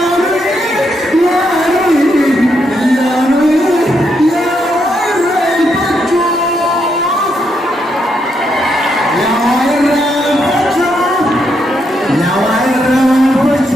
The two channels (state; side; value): normal; both; correlation 0.78